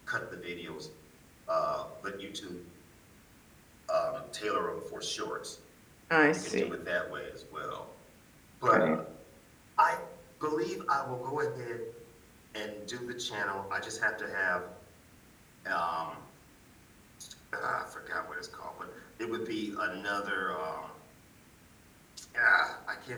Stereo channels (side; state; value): both; identical; correlation 1.00